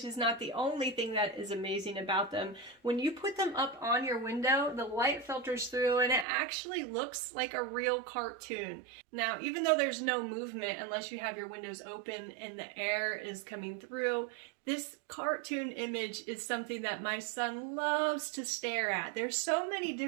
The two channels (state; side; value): drops out; left; at 6.2 s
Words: is not the only thing that is amazing about them. When you put them up on your window, the light filters through and it actually looks like a real cartoon. Now, even though there's no movement unless you have your windows open and the air is coming through, this cartoon image is something that my son loves to stare at. There's so many